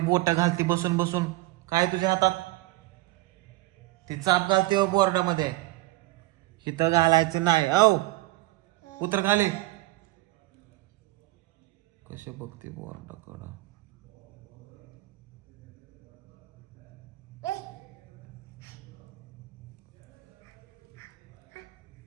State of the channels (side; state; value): left; quieter; 19.3 dB